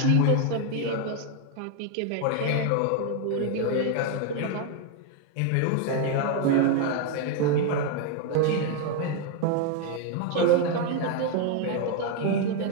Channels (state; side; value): different; both; correlation 0.01